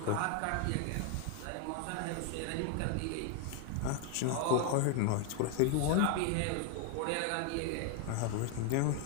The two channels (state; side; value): different; both; correlation 0.01